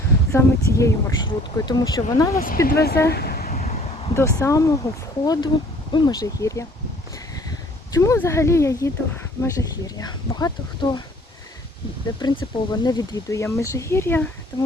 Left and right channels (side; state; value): both; normal; correlation 0.55